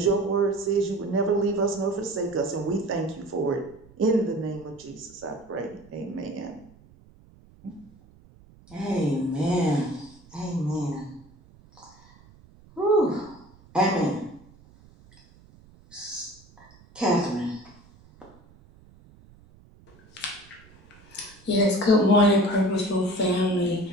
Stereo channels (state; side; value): noise; right; rumble, 26 dB below the sound